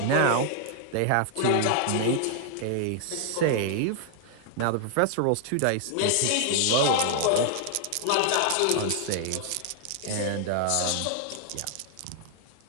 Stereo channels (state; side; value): different; both; correlation 0.00